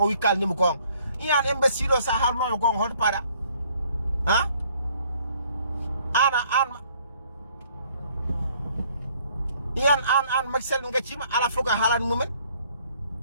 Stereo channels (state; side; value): inverted; both; correlation -0.62